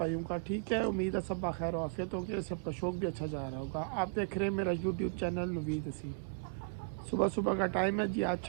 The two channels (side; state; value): left; quieter; 35.6 dB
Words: का? ठीक है, उम्मीद है सब खैर आफियत होगी, सबका शौक भी अच्छा जा रहा होगा। आप देख रहे हैं मेरा यूट्यूब चैनल नवीद हसीन। सुबह सुबह का टाइम है जी, आज